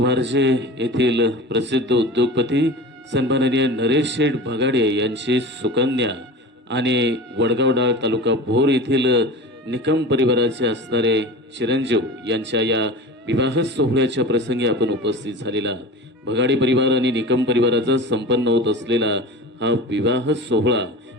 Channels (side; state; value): both; normal; correlation 0.33